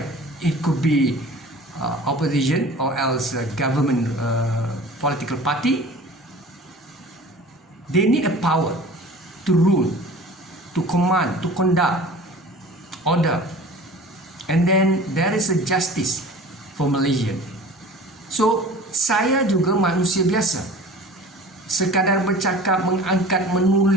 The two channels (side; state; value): both; normal; correlation 0.42